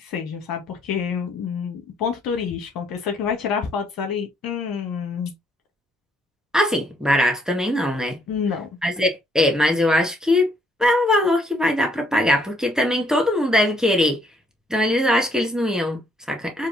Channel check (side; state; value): both; normal; correlation 0.68